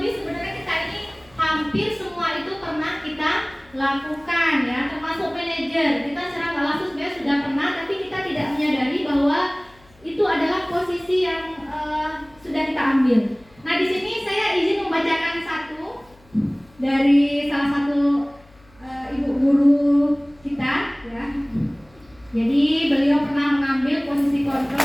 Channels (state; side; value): noise; left; hum, 29 dB below the sound